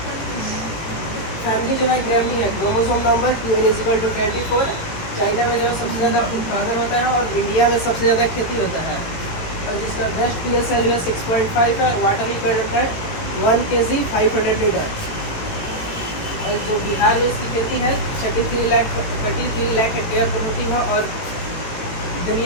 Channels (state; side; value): late; right; 18 ms